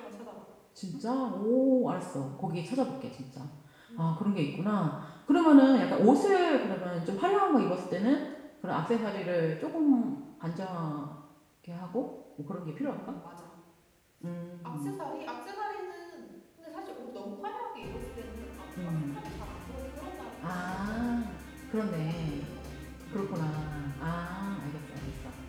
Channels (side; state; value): both; identical; correlation 1.00